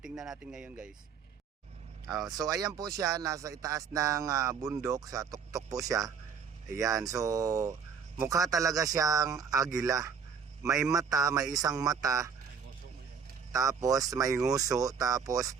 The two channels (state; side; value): quieter; left; 6.5 dB